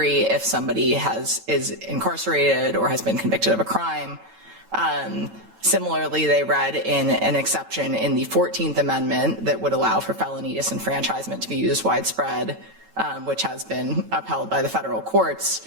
if somebody is incarcerated or has been convicted of a crime. Similarly, they read in an exception in the 14th Amendment that would allow for felony disenfranchisement to be used widespread, which has been upheld by the federal courts.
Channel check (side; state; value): left; late; 9.0 ms